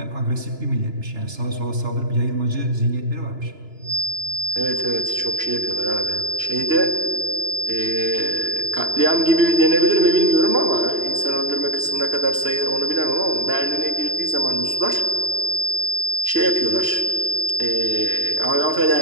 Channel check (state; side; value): late; left; 2.9 ms